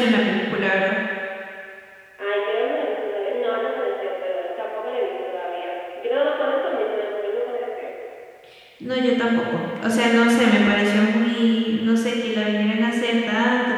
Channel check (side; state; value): both; identical; correlation 1.00